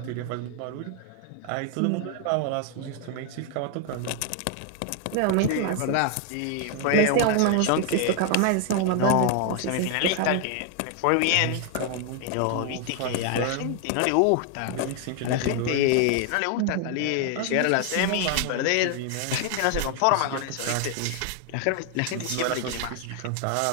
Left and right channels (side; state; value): both; different; correlation 0.00